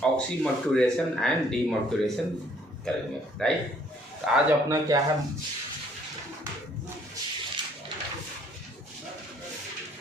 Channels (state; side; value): normal; both; correlation 0.63